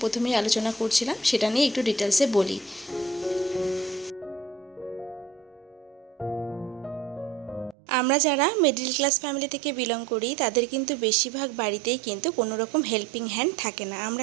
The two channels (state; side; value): drops out; left; at 7.8 s